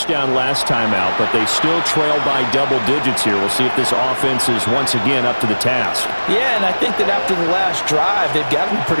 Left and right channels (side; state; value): both; inverted; correlation -1.00